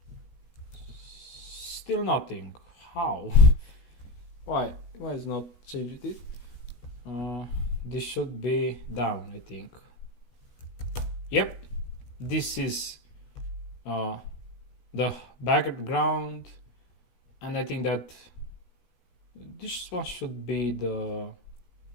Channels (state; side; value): late; right; 16 ms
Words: Still nothing. How? Why is not changed it? This should be down, I think. Yep, this is the background, and I think that this one should be the